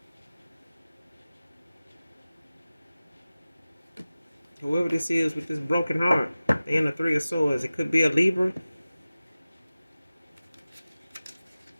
Whoever this is with this broken heart, they in the Three of Swords. It could be a Libra.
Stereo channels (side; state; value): both; inverted; correlation -0.96